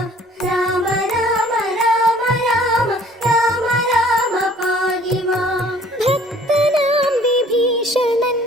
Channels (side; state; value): both; normal; correlation 0.55